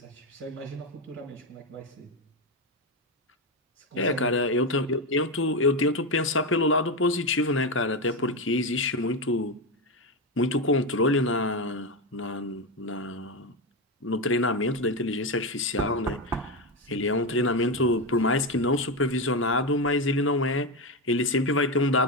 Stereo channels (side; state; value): both; normal; correlation 0.12